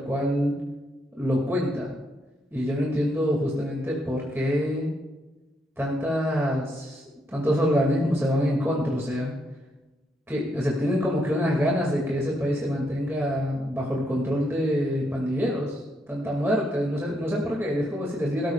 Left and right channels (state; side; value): normal; both; correlation 0.77